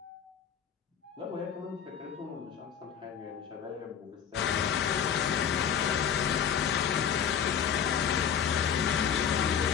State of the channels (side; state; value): right; quieter; 8.1 dB